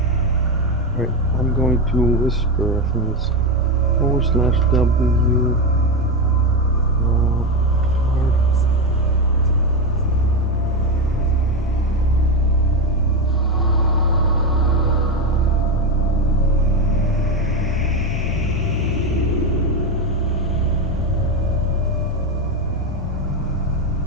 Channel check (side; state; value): both; normal; correlation 0.13